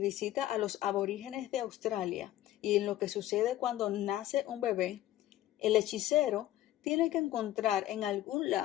a los aborígenes de Australia y en lo que sucede cuando nace un bebé. El hechicero tiene que encontrar en algún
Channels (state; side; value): quieter; right; 13.9 dB